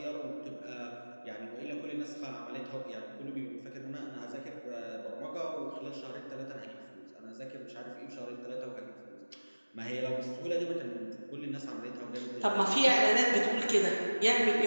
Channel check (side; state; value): both; inverted; correlation -1.00